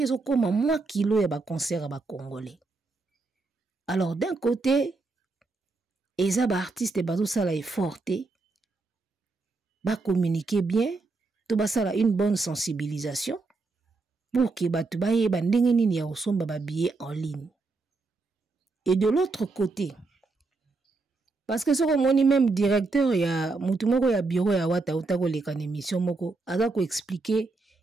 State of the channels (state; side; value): quieter; left; 3.7 dB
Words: zo comme moi kilo ya ba concert ba congolais. Alors d'un côté eza ba artiste bazo sala effort te ba communiquer bien to ba sala une bonne sensibilisation pour que batu ba yeba ndenge nini ya osomba ba billet en ligne. Et de l'autre côté parce que ce que moni même directeur ya mutu moko ya bureau ya wata utako leka na émission moko aza ko expliquer